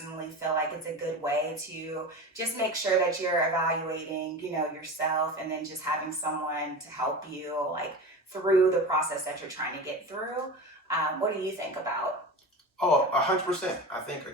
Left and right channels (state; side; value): normal; both; correlation 0.29